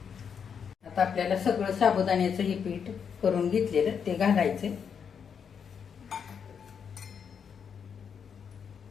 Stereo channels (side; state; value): right; quieter; 7.0 dB